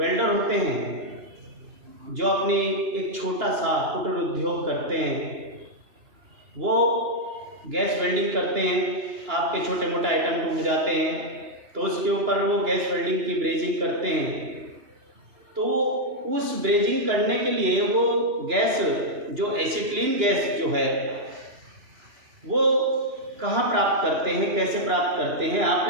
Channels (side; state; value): left; late; 2.8 ms